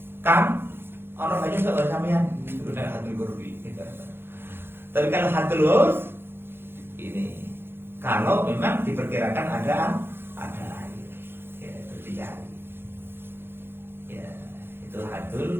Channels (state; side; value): late; left; 0.11 ms